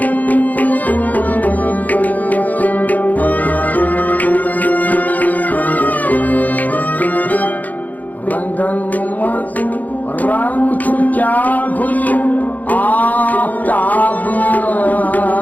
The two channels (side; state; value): right; late; 0.080 ms